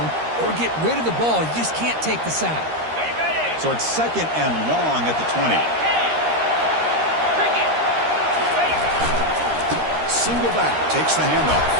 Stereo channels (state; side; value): late; left; 13 ms